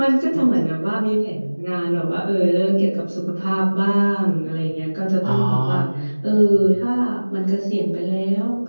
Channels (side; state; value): both; inverted; correlation -1.00